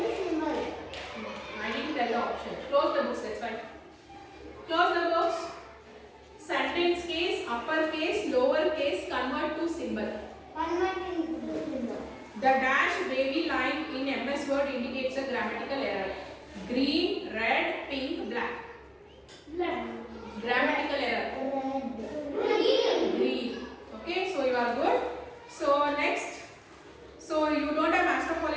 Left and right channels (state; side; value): identical; both; correlation 1.00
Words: symbol. I didn't tell the option. Close the books. That's fine. Close the books. Sentence case, uppercase, lower case, convert to symbol. Convert into symbol. The dash wavy line in MS Word indicates a grammatical error. Green, red, pink, black. Black. Grammatical error. Red. Green. Okay, so you are good. So next, so you don't have master